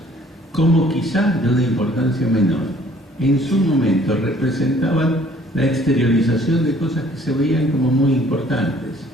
como quizás de una importancia menor, en su momento representaban la exteriorización de cosas que se veían como muy importantes.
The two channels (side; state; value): both; normal; correlation 0.57